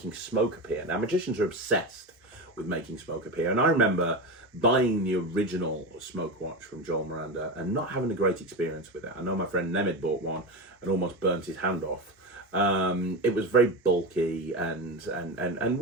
smoke appear. Now, magicians are obsessed with making smoke appear, and I remember buying the original smoke watch from Joel Miranda and not having a great experience with it. I know my friend Nemid bought one and almost burnt his hand off. It was very bulky and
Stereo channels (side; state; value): both; normal; correlation 0.21